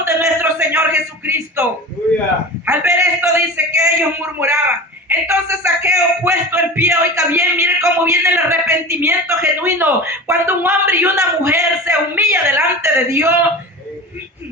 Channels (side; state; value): both; normal; correlation 0.32